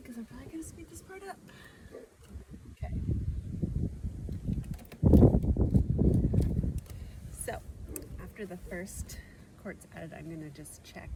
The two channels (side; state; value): both; identical; correlation 1.00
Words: because I'm probably going to speed this part up. Okay. So, after the first quart's added, I'm going to just check